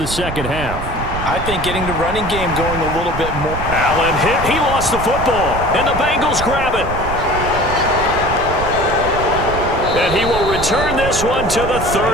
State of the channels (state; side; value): noise; right; rumble, 7 dB below the sound